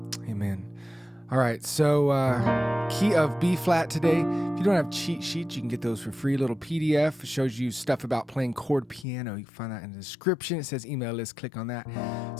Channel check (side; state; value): right; drops out; at 9.1 s